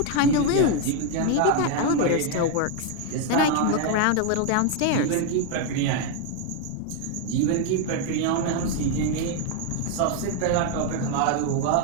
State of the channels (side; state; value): both; different; correlation 0.01